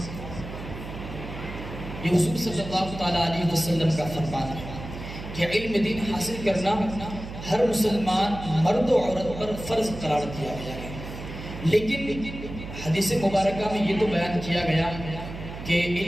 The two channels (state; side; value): noise; right; hum, 10 dB below the sound